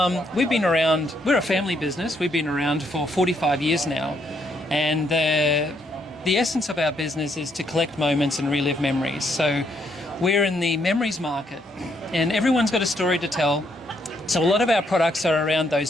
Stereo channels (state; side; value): normal; both; correlation 0.73